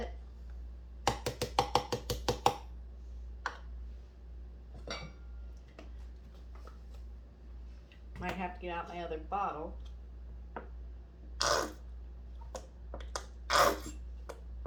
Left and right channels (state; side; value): identical; both; correlation 1.00